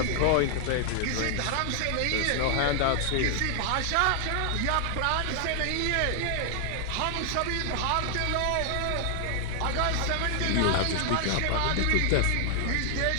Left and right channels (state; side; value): different; both; correlation 0.00